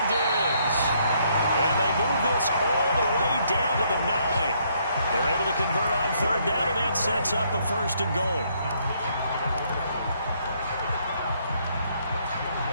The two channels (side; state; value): both; inverted; correlation -0.70